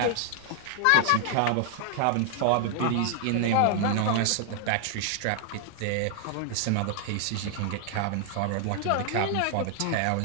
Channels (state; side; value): different; both; correlation 0.00